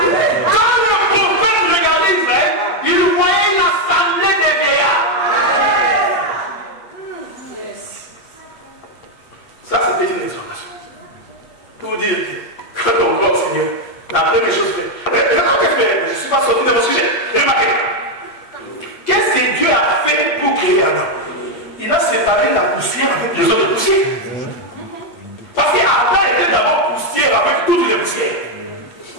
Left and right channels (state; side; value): late; right; 8.4 ms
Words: Quand le prophète regardait Israël, il voyait une assemblée de vieillards. Ça, c'était une exhortation. Pour dire que quand on voit au Seigneur, la première chose fait. Maintenant, qu'est-ce que je ne suis pas sorti de mon sujet. Remarquez. Qu'est-ce que Dieu a fait pour créer Adam? Il a séparé la poussière avec les autres poussières. Parce qu'Adam était d'abord poussière avec toutes les poussières.